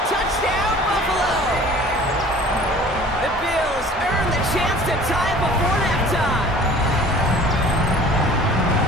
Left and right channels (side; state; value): both; normal; correlation 0.47